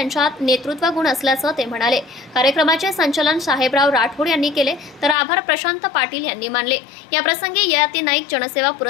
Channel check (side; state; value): right; drops out; at 5.2 s